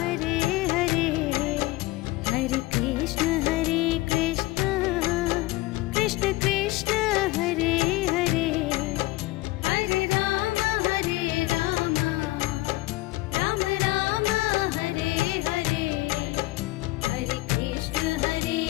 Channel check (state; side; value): quieter; right; 19.7 dB